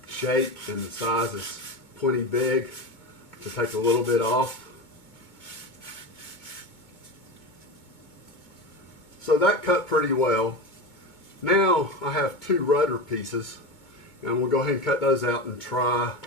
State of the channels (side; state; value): right; late; 2.2 ms